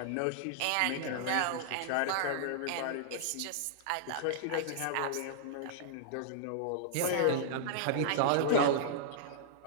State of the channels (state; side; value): different; both; correlation -0.01